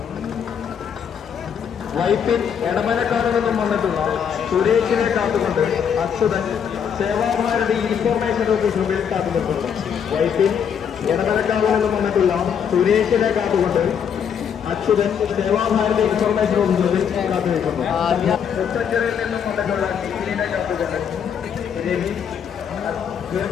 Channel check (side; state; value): right; quieter; 7.7 dB